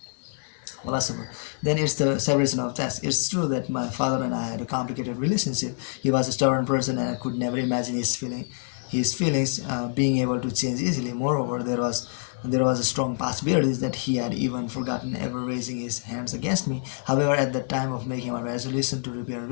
Philosopher, then it's the separation of tasks. It's true that my father and I had a complicated relationship. He was a stubborn person, and I could never imagine his feelings being able to change easily. Moreover, there was a strong possibility that he had even forgotten ever raising his hands against me. However, at the time of making my resolution to repair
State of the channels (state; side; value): silent; right; digital silence